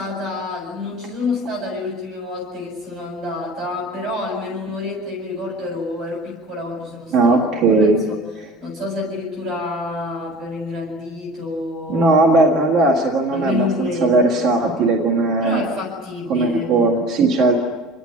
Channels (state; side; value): normal; both; correlation 0.41